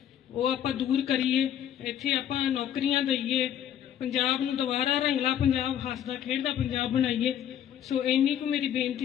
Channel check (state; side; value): quieter; right; 10.1 dB